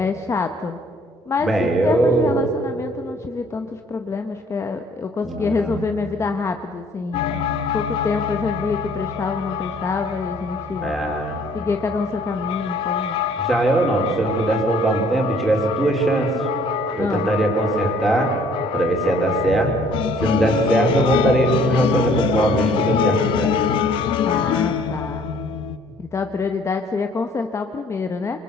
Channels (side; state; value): both; normal; correlation 0.59